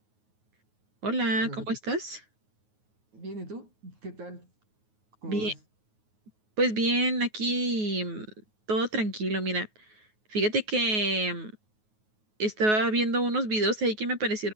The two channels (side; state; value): left; late; 9.4 ms